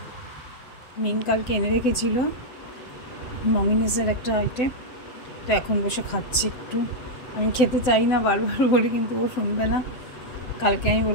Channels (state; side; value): late; right; 7.7 ms